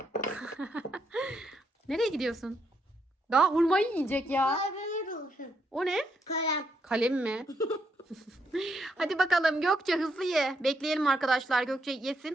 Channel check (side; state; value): both; normal; correlation 0.78